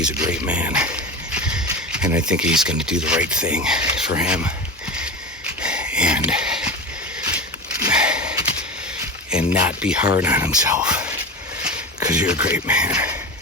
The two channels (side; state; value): both; normal; correlation 0.24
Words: a great man. And I think he's going to do the right thing for him. And not be hard on himself. Because you're a great man.